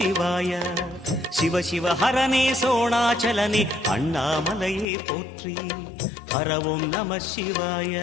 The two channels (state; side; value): drops out; right; at 4.9 s